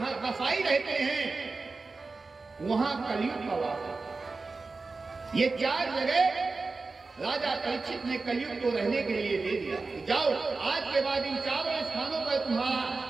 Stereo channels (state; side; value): quieter; left; 3.9 dB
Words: कसाई रहते हैं वहां कलयुग का वास है। ये 4 जगह राजा परीक्षित ने कलयुग को रहने के लिए दे दिया। जाओ आज के बाद इन 4 स्थानों पर तुम्हारा